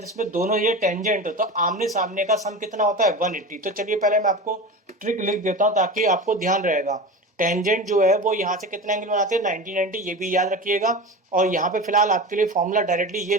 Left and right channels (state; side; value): normal; both; correlation 0.28